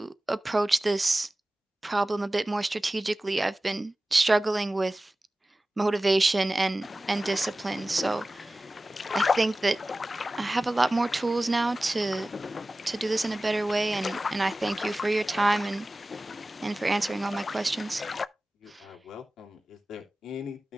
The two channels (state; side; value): normal; both; correlation 0.97